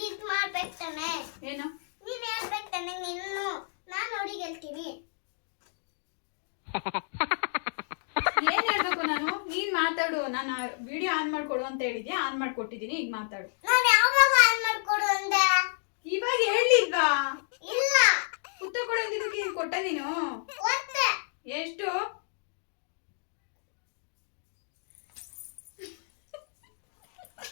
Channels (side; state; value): right; silent; digital silence